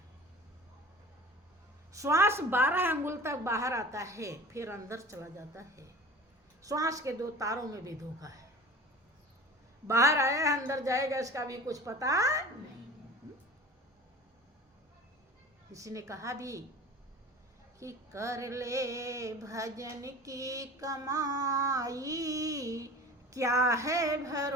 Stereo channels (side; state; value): both; normal; correlation 0.39